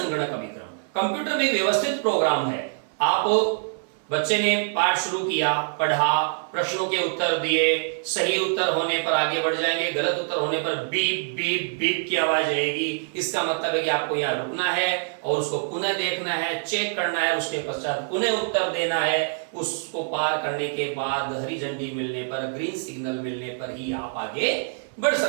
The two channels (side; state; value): left; silent; 56 dB below the other